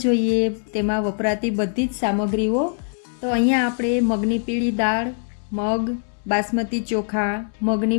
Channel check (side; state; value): right; silent; 57 dB below the other